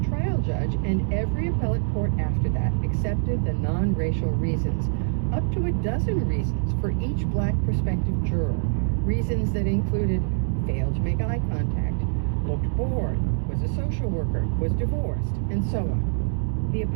trial judge and every appellate court after that accepted the non-racial reasons, up to a dozen reasons for each black prospective juror. Reasons that included failed to make eye contact, looked bored, was a social worker, was divorced, and so on. The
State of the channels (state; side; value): silent; left; digital silence